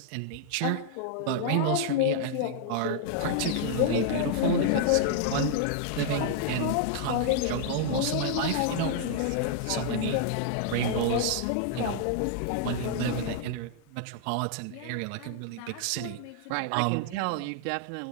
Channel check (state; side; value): different; both; correlation -0.01